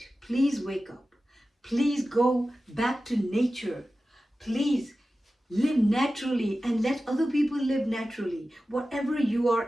Please wake up. Please go back to nature. Please live naturally and let other people live naturally. Whatever you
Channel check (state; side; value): normal; both; correlation 0.95